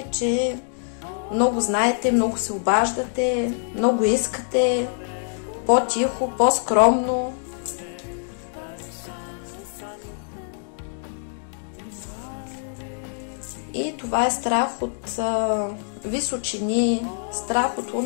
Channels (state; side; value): silent; right; digital silence